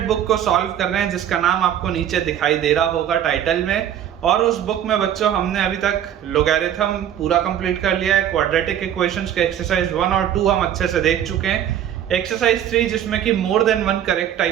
बुक को सॉल्व कर रहे हैं जिसका नाम आपको नीचे दिखाई दे रहा होगा टाइटल में। और उस बुक में बच्चों हमने अभी तक लोगैरिथम पूरा कंप्लीट कर लिया है। क्वाड्रेटिक इक्वेशंस के एक्सरसाइज 1 और 2 हम अच्छे से देख चुके हैं। एक्सरसाइज 3 जिसमें कि more than one correct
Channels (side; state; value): left; quieter; 10.3 dB